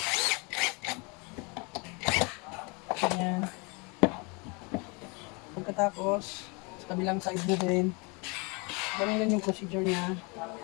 Ganyan. Pagkatapos, sa kabilang side mo din, ganun din yung procedure niya.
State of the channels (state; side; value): quieter; right; 30.3 dB